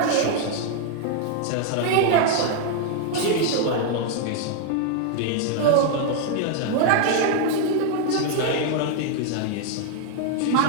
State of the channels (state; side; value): different; both; correlation 0.00